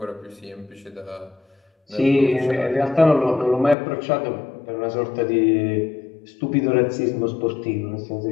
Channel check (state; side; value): drops out; right; at 3.8 s